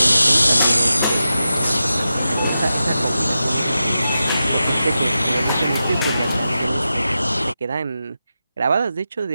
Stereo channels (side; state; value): both; inverted; correlation -0.91